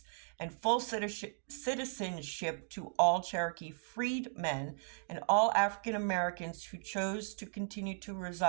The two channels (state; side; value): silent; left; digital silence